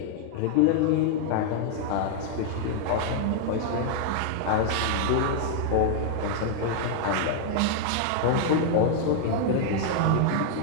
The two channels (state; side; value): different; both; correlation -0.01